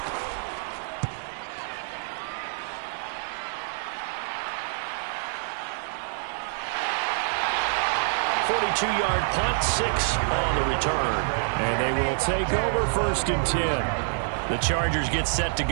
42-yard punt, 6 on the return. And they will take over 1st and 10. The Chargers get set to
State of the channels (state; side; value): silent; left; digital silence